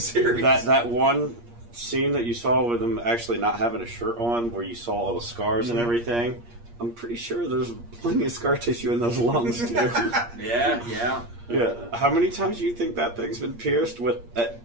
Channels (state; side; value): late; left; 8.5 ms